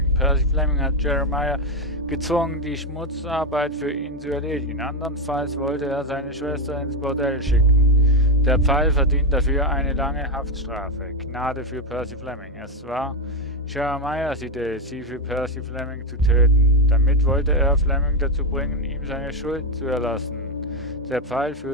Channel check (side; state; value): both; normal; correlation 0.08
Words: Percy Fleming hat Jeremiah gezwungen, die Schmutzarbeit für ihn zu erledigen. Andernfalls wollte er seine Schwester ins Bordell schicken. Der Pfeil verdient dafür eine lange Haftstrafe. Gnade für Percy Fleming. Es war Jeremiahs Idee, sie für Percy Fleming zu töten. Damit wollte er Fleming dazu bringen, ihm seine Schuld zu erlassen. Der Pfeil